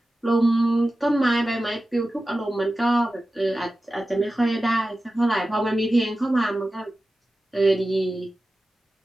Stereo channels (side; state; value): both; normal; correlation 0.94